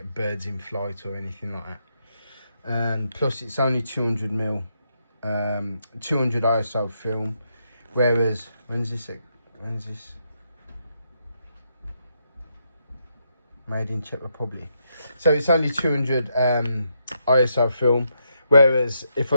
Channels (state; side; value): inverted; both; correlation -0.80